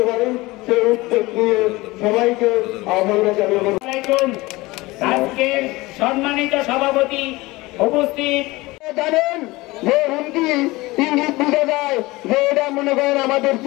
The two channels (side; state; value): right; quieter; 21.0 dB